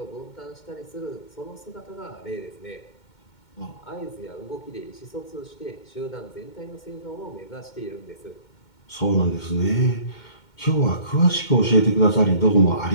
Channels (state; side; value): late; right; 2.2 ms